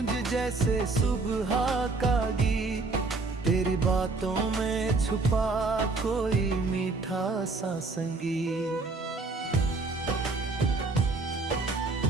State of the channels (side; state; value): left; quieter; 3.7 dB